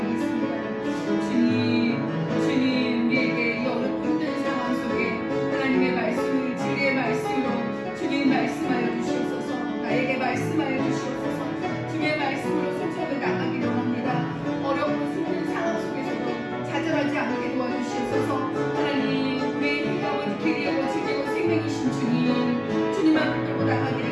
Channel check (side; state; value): both; identical; correlation 1.00